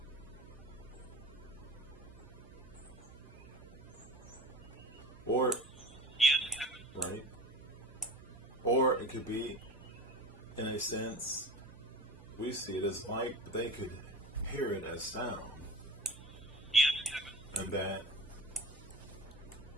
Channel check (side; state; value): right; noise; hum, 21 dB below the sound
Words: Or, Yes, Kevin. right? Or it could be, in a sense, we see it as light, but they could hear it as sound. Yes, Kevin. And that